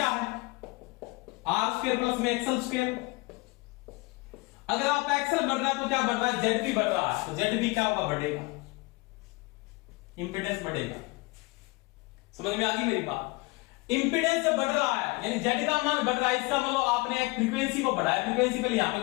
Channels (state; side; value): quieter; right; 25.7 dB